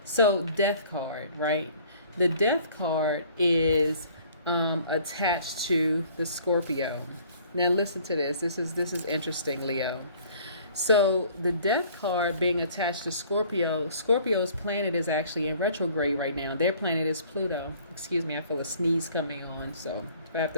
So death card, right? The death card is attached to the Scorpio. Now listen to this. This is interesting, Leo. So the death card being attached to Scorpio, Scorpio's planet is actually in retrograde right now. Their planet is Pluto. Excuse me, I feel a sneeze coming on, so if I have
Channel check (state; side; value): inverted; both; correlation -0.54